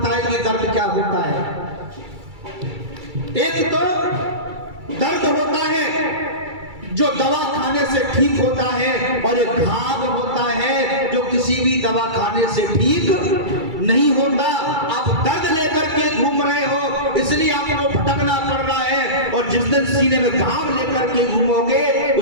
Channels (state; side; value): late; left; 2.3 ms